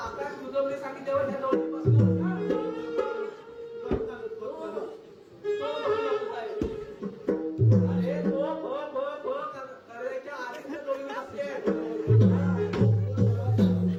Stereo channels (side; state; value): both; identical; correlation 1.00